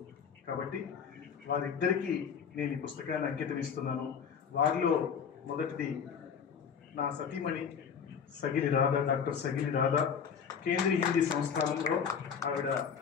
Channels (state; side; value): quieter; right; 6.9 dB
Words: కాబట్టి వారిద్దరికీ నేను ఈ పుస్తకాన్ని అంకితం ఇస్తున్నాను. వారిలో మొదటిది నా సతీమణి సగిలి రాధా, డాక్టర్ సగిలి రాధా. కేంద్రీయ హిందీ సంస్థానంలో ఆవిడ